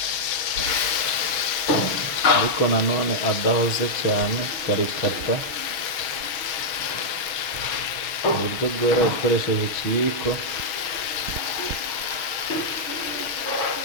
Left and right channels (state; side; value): late; right; 6.2 ms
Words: ariko nanone adahoze cyane, ukarikata mu buryo bworoshye ukoresheje ikiyiko.